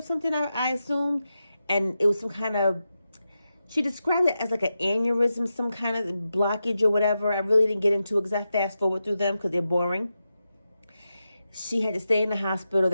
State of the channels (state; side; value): inverted; both; correlation -0.89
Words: something, I assumed. And it was some kind of, she described it as like an aneurysm, some kind of blockage or whatever. I really didn't get into it because I fast forward through them because they're boring. She had to stay in the hospital.